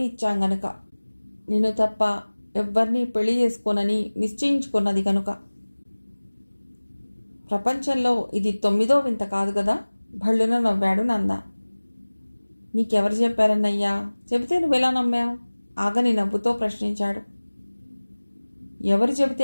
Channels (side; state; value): both; inverted; correlation -1.00